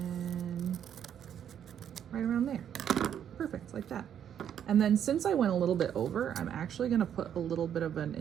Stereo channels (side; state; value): left; quieter; 9.3 dB